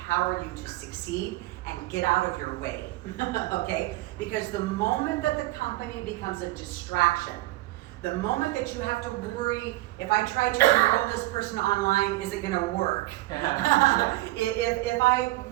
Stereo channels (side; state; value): left; quieter; 19.2 dB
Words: you to succeed and get out of your way, okay? Because the moment that the company becomes a distraction, the moment that you have to worry, if I try to enroll this person online, is it gonna work? If I